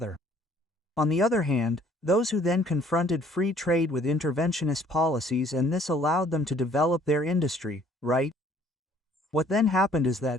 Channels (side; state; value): both; normal; correlation 0.59